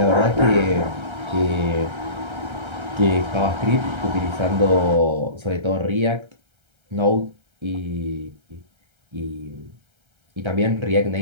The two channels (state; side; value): late; left; 1.3 ms